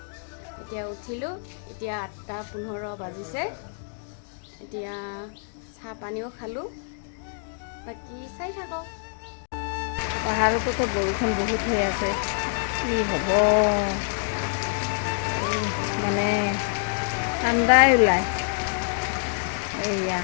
এতিয়া উঠিলোঁ, এতিয়া 8:15 বাজিছে। এতিয়া চাহ পানীও খালোঁ, বাকী চাই থাকক। পাহাৰতোতো বৰষুণ বহুত হৈ আছে, কি হ'ব মানে ঠাণ্ডাই ওলায়। এইয়া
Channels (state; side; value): silent; right; digital silence